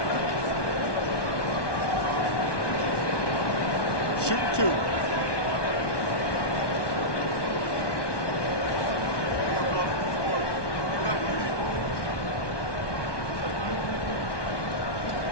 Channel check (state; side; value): late; right; 1.2 ms